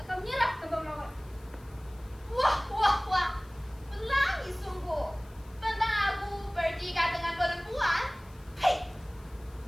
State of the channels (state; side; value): noise; left; hiss, 27 dB below the sound